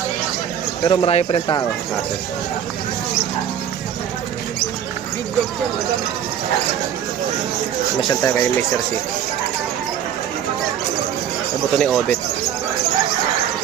Pero marami pa rin tao. Aso. Masyal tayo kay Mr. C. Ang buto ni Obet.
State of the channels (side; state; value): left; quieter; 9.4 dB